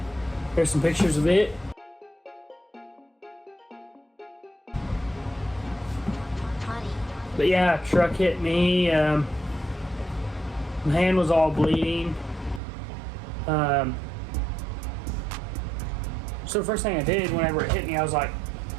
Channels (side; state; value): left; drops out; at 12.6 s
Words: There's some pictures of it. But yeah, truck hit me. My hand was all bleeding. So the first thing I did whenever it hit me, I was